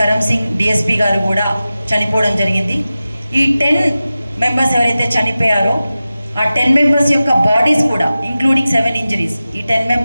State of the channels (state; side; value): inverted; both; correlation -0.95